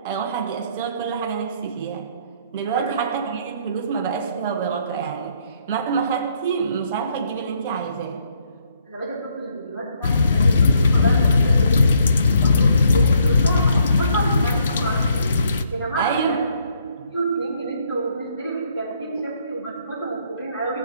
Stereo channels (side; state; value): both; inverted; correlation -0.70